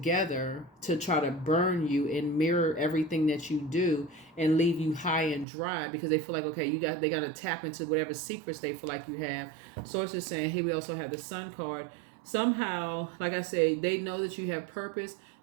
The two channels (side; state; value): left; drops out; at 5.5 s